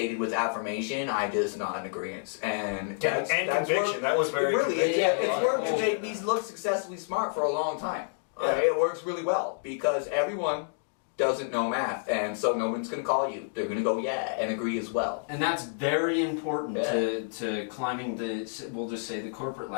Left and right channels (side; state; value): right; silent; digital silence